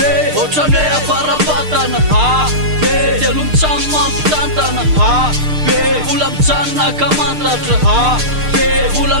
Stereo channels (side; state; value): left; late; 6.6 ms